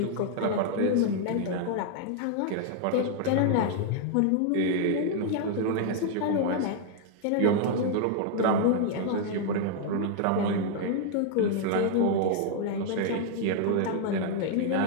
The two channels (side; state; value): both; different; correlation 0.00